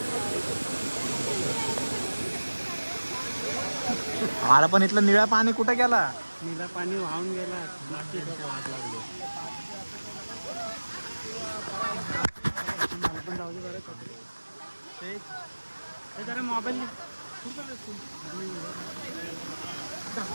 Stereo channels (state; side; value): inverted; both; correlation -1.00